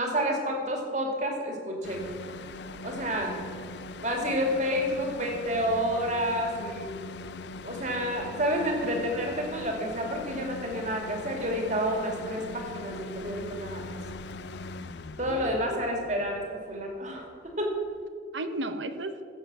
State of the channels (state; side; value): normal; both; correlation 0.12